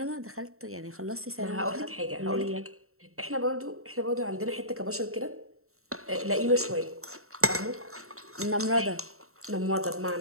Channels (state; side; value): late; left; 0.63 ms